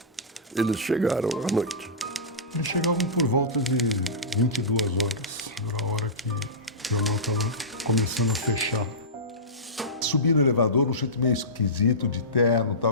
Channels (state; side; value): normal; both; correlation -0.19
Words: Eles chegaram à noite. Eles chegavam por volta de 22 horas. Era a hora que o jornal estava começando a fechar. Subia no elevador, um jeito meio esquisito, de terno,